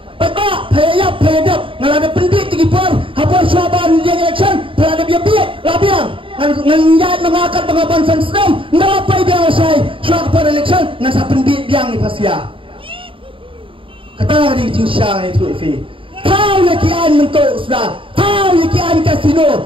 Papa, payap, ngalada pendit tinggi par, hapar syaban dia election, pelada biar labiang, nganjat mengakat pengapan sensenam, ngalapai biang saya, suak par election, ngasa pendit biang ni pasia. Kata hari cincang itu ifi, tahu ya kian mentok sudah, tahu ya kian kasino,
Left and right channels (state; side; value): late; left; 0.25 ms